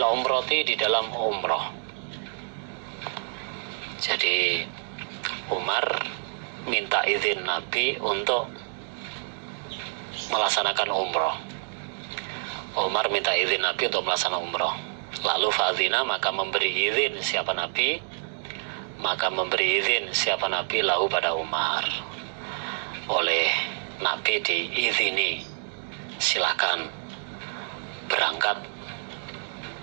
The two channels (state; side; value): silent; left; digital silence